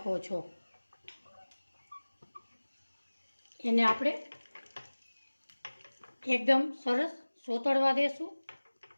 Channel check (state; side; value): inverted; both; correlation -1.00